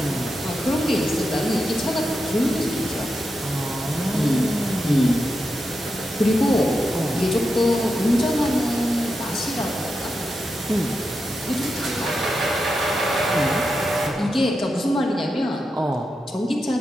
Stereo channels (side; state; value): both; normal; correlation 0.88